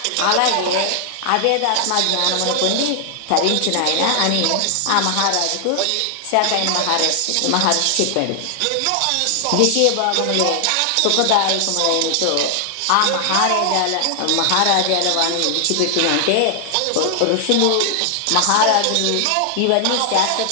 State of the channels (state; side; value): different; both; correlation 0.00